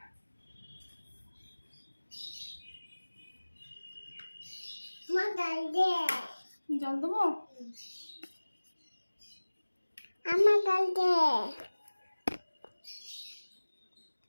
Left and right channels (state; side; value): inverted; both; correlation -1.00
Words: জল দেবো? আমার জল দে।